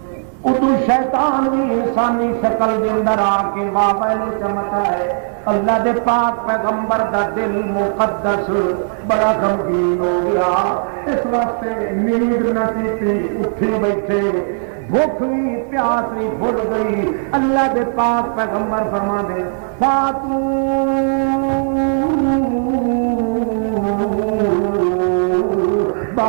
ادو شیطان بھی انسانی شکل دے اندر آ کے مابین چمکا ہے اللہ دے پاک پیغمبر دا دل مقدس بڑا غمگین ہو گیا اس واسطے نیند نہ کیتی اٹھی بیٹھے بھوک بھی پیاس بھی بھول گئی اللہ دے پاک پیغمبر فرما دے فاتو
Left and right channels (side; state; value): left; silent; 65 dB below the other